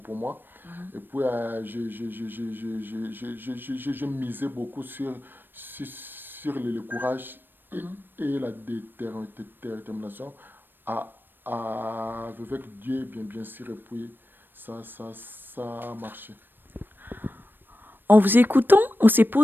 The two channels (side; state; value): left; late; 0.095 ms